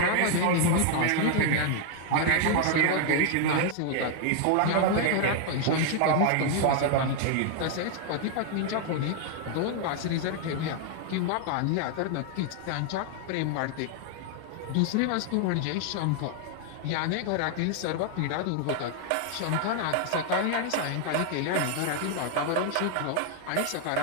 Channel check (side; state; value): both; different; correlation 0.00